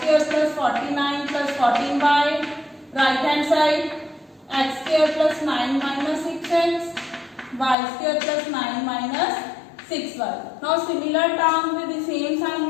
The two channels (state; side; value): drops out; right; at 7.8 s